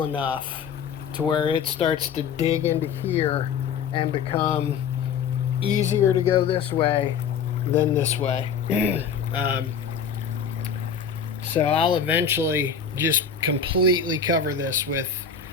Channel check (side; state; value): right; quieter; 6.7 dB